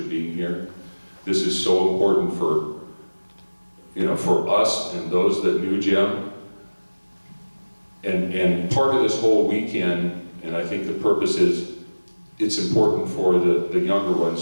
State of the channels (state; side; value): inverted; both; correlation -1.00